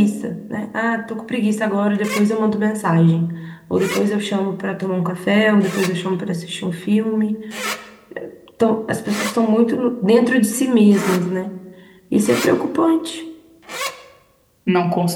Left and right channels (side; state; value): both; identical; correlation 1.00